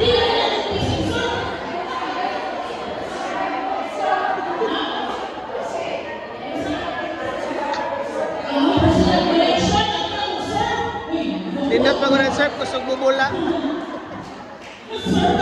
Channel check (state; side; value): identical; both; correlation 1.00